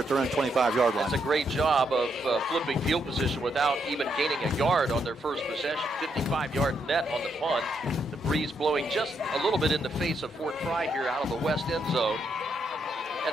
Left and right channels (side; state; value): both; normal; correlation 0.78